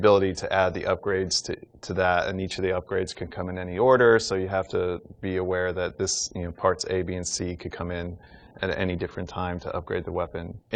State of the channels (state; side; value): identical; both; correlation 1.00